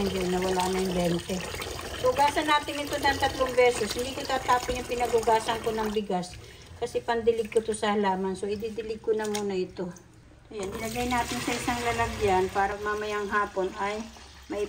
hindi. Nawala na yung 20. Hugasan natin ito ng 3 beses. Hindi ko tatapin yung pinagugasan ko ng bigas. Kasi pandilig ko to sa halaman. So, ididilig ko na muna ito. Ayan, ilagay natin sa isang lalagyan para mamayang hapon ay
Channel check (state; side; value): identical; both; correlation 1.00